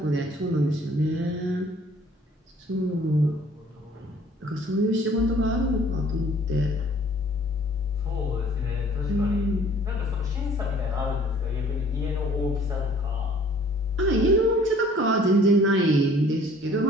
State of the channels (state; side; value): normal; both; correlation 0.55